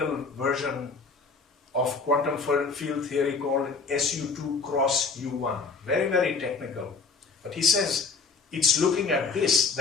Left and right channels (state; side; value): quieter; right; 4.7 dB